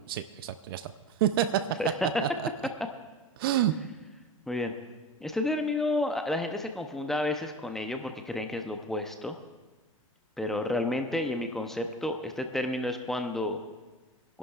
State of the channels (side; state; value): both; normal; correlation 0.32